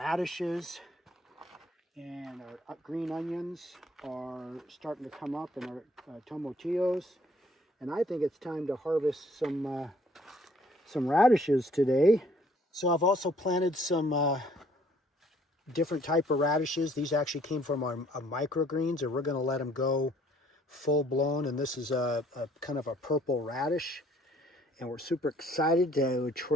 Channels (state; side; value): normal; both; correlation 0.61